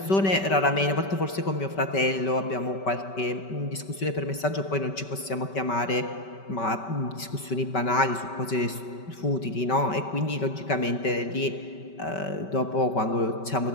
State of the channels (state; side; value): late; right; 5.2 ms